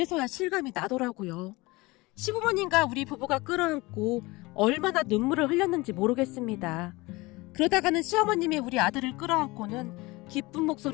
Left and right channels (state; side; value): quieter; right; 22.4 dB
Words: 실감이 나더라고요. 시부모님과 우리 부부가 끌어안고 얼마나 눈물을 흘렸는지 모르겠습니다. 그러다가는 시어머님이 우리 아들을 끌어안고는 기쁜